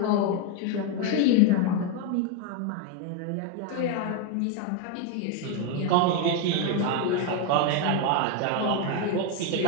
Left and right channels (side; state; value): both; different; correlation 0.02